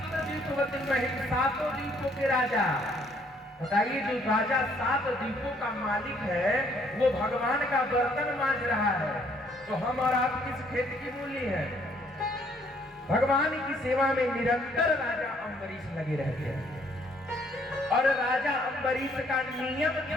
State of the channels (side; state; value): both; normal; correlation 0.65